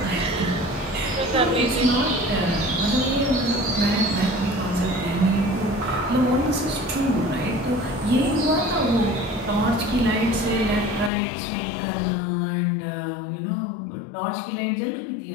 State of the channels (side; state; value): right; drops out; at 11.1 s